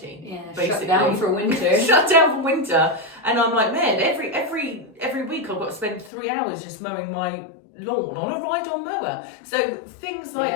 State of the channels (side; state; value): right; drops out; at 6.1 s